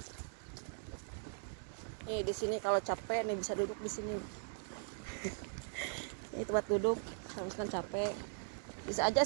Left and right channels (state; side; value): silent; left; digital silence